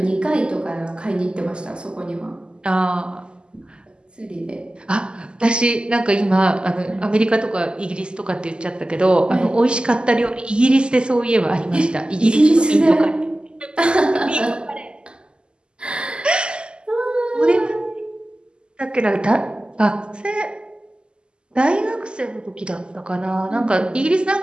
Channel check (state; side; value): late; left; 0.049 ms